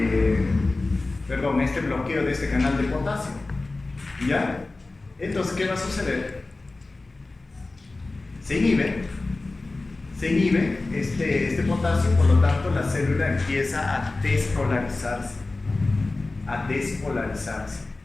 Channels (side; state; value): right; quieter; 3.3 dB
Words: bloqueo de este canal de potasio. ¿Ya? Entonces, ¿qué va a suceder? Se inhibe este potasio, por lo tanto la célula empieza a despolarizarse.